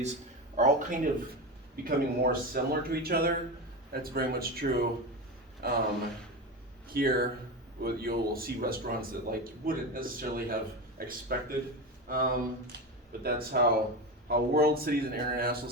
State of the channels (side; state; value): both; normal; correlation 0.20